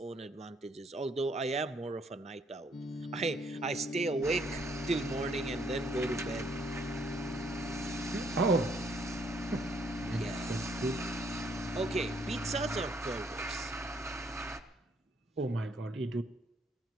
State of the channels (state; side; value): normal; both; correlation 0.67